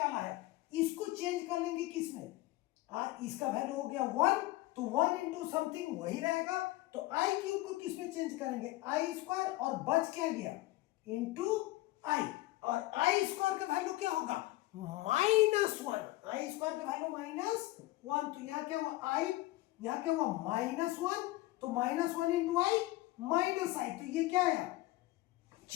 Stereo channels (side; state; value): right; quieter; 18.4 dB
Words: है, इसको चेंज कर लेंगे किसमें, इसका वैल्यू हो गया 1 तो 1 इंटू समथिंग वही रहेगा। तो आई क्यूब को किसमें चेंज करेंगे आई स्क्वायर और बच क्या गया इंटू आई, और आई स्क्वायर का वैल्यू क्या होगा -1। आई स्क्वायर का वैल्यू -1, तो यहां क्या हुआ आई, यहां क्या हुआ -1, तो -1 इंटू आई माइनस आई, तो ये क्या आया